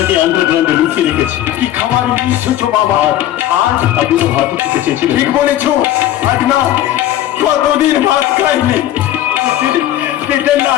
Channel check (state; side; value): quieter; right; 12.9 dB